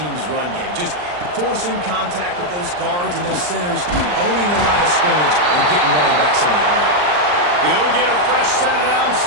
run game. Just forcing contact with those guards and those centers, owning the line of scrimmage, and getting running backs on the ground. He'll get a fresh set down,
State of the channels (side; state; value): left; late; 40 ms